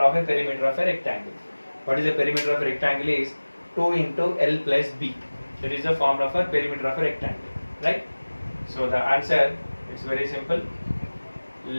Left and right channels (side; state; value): both; inverted; correlation -1.00